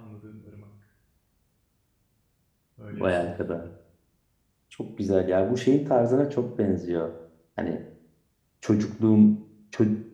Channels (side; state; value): both; identical; correlation 1.00